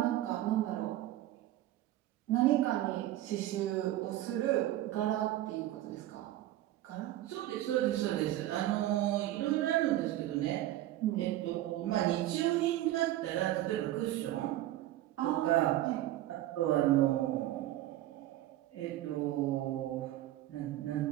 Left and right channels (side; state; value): left; quieter; 14.6 dB